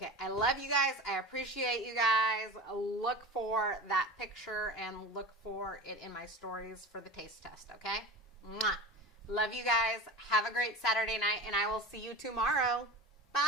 I love you guys. I appreciate you guys. Look for that picture and look for it in my stories for the taste test, okay? Mwah. Love you guys. Have a great Saturday night, and I will see you tomorrow.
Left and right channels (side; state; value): both; normal; correlation 0.31